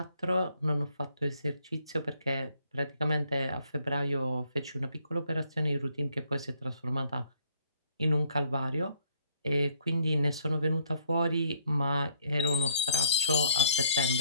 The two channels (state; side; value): inverted; both; correlation -0.65